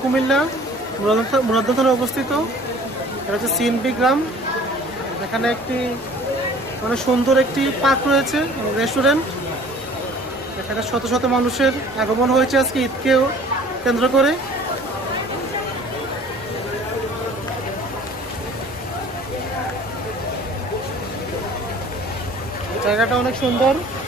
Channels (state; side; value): normal; both; correlation 0.49